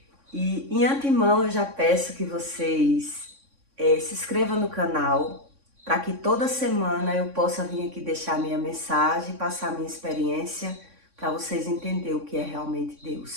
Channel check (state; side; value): late; left; 3.6 ms